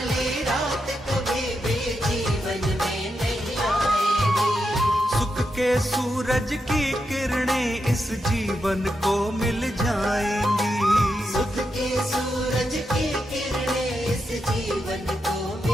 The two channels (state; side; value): normal; both; correlation 0.85